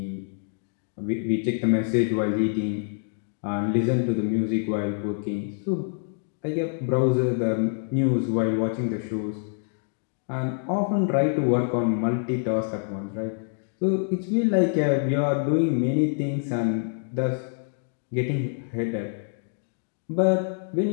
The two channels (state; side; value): silent; right; digital silence